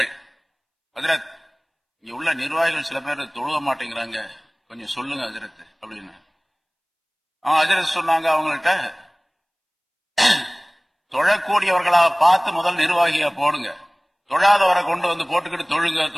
ஹஜ்ரத் இங்க உள்ள நிர்வாகிகள் சில பேர் தொழுக மாட்டேங்கிறாங்க, கொஞ்சம் சொல்லுங்க ஹஜ்ரத் அப்படின்னு. ஹஜ்ரத் சொன்னாங்க அவங்கள்ட்ட, தொழக்கூடியவர்களா பார்த்து முதல் நிர்வாகியா போடுங்க, தொழாதவரை கொண்டு வந்து போட்டுக்கிட்டு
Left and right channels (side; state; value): both; identical; correlation 1.00